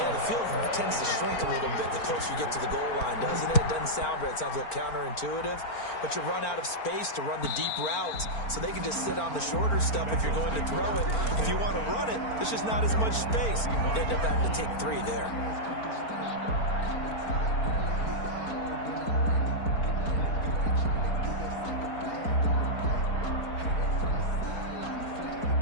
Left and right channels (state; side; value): late; right; 4.4 ms